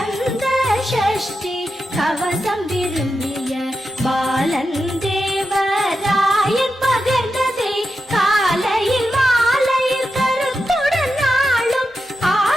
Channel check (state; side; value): normal; both; correlation 0.89